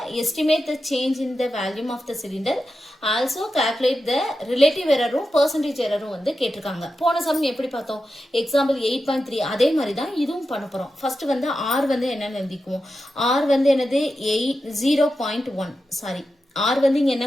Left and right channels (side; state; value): both; normal; correlation 0.90